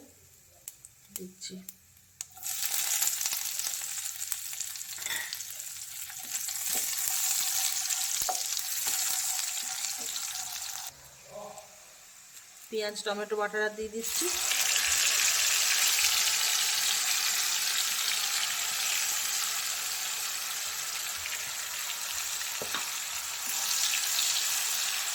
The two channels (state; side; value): identical; both; correlation 1.00